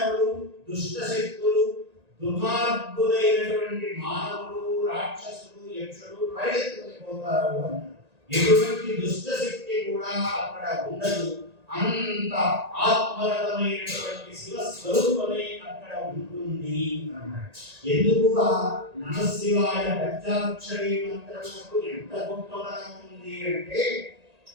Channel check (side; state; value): left; late; 1.9 ms